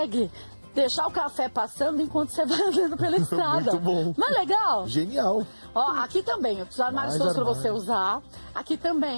deixar o café passando enquanto você vai andando pela estrada. Muito bom. Não é legal? Genial. Ó, aqui também, os armários Mais todos para armário. você usar. Aqui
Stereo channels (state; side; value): inverted; both; correlation -1.00